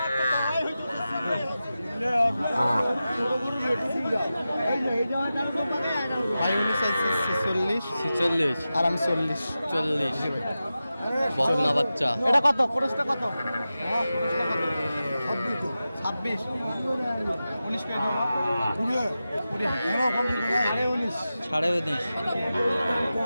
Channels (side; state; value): both; inverted; correlation -0.93